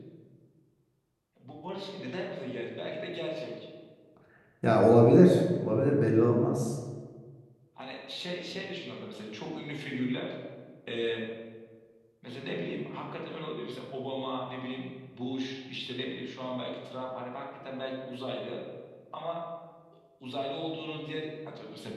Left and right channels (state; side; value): identical; both; correlation 1.00